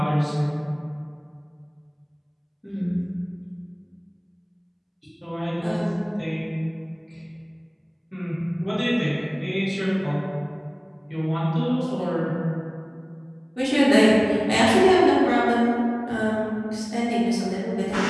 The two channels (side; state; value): both; identical; correlation 1.00